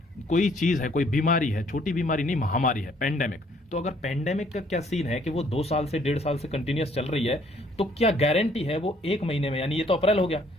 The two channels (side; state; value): both; normal; correlation 0.63